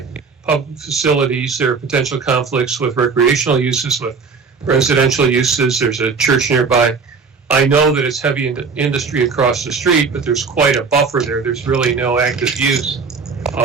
public facilities. There are potential conflicts with recreational uses, with residential uses. There's a church nearby. I know that it's heavy industry across the street, but there's quite a buffer there. There's really no active use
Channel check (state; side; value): quieter; left; 5.0 dB